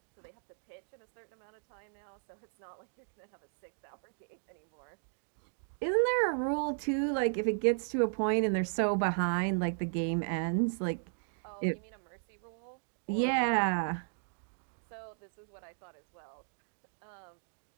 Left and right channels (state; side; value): silent; left; digital silence